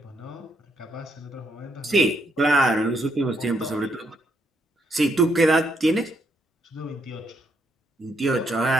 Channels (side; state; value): both; normal; correlation 0.75